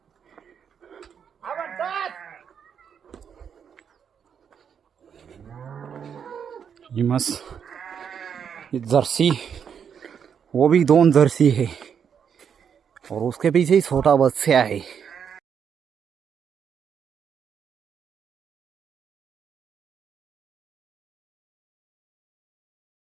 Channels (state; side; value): quieter; left; 7.5 dB